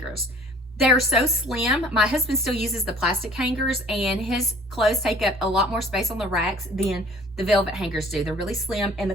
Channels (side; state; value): both; normal; correlation 0.52